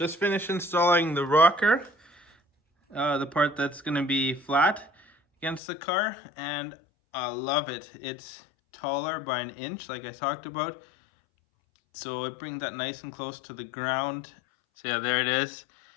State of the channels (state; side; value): drops out; right; at 5.6 s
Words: finished installing the rocker, the part that's going to be flat against the car, and I love it. It's taller by an inch, like I talked about, so it brings that nice and close to the ground. So yeah, there it is.